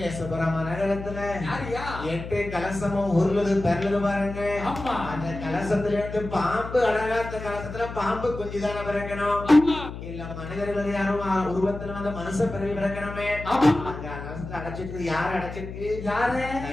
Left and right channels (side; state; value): left; noise; hum, 10 dB below the sound